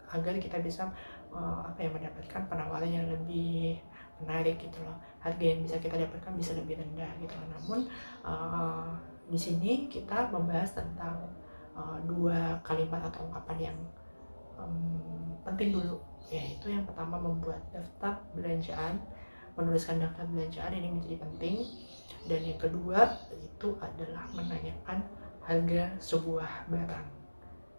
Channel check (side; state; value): both; inverted; correlation -1.00